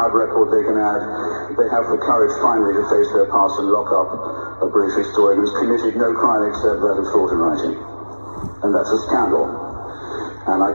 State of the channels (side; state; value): both; inverted; correlation -1.00